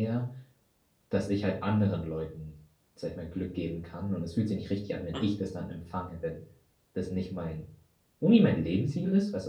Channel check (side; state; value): both; identical; correlation 1.00